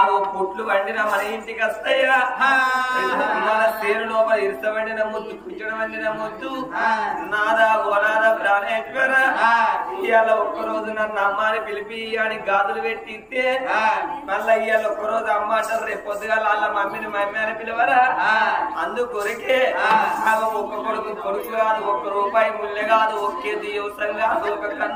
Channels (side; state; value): both; identical; correlation 1.00